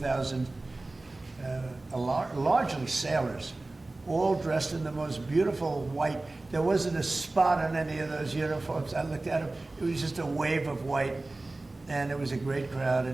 largely sailors, all dressed in the most beautiful white. There wasn't a spot on any of those uniforms. I looked at them. It was just a wave of white. And it was a great crowd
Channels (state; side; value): quieter; left; 3.0 dB